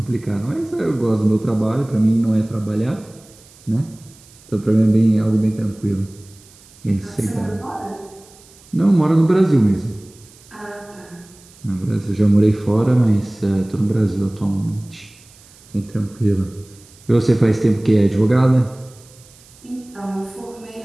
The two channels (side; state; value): right; noise; hiss, 25 dB below the sound